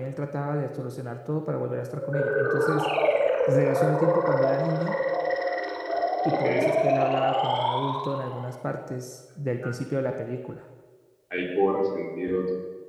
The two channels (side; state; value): both; identical; correlation 1.00